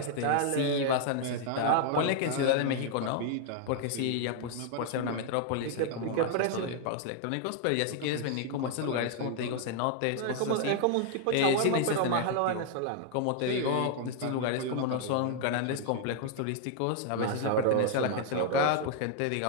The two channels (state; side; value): different; both; correlation 0.00